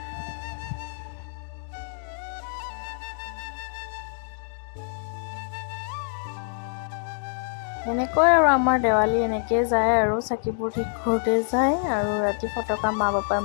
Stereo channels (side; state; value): right; silent; 61 dB below the other